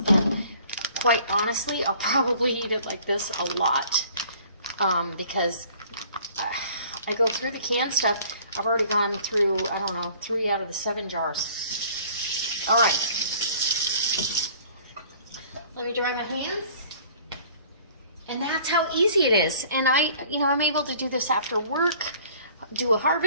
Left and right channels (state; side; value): inverted; both; correlation -0.53